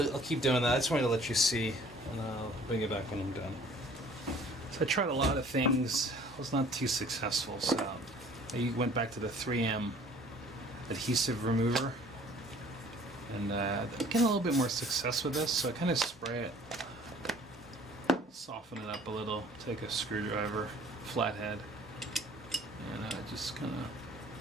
I'll keep doing that. I just wanted to let you see, and I'll bring it back when I'm done. So I tried a lot of things. I was not too successful, so I went back to the 3M adhesive remover, and I'm getting a little bit more success with this. So I kind of spray it, soften it up a little, take a screwdriver, flathead, and just kind of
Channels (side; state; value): both; normal; correlation 0.53